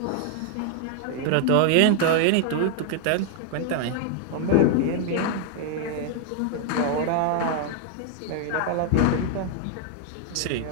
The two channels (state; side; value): different; both; correlation 0.00